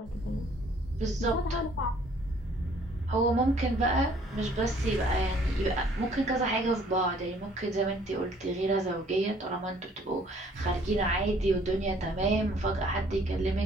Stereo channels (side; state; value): both; normal; correlation 0.59